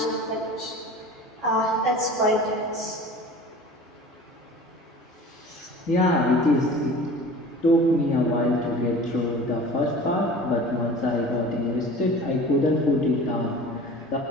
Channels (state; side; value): normal; both; correlation 0.40